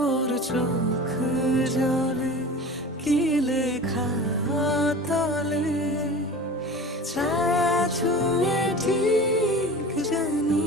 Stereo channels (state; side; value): normal; both; correlation 0.35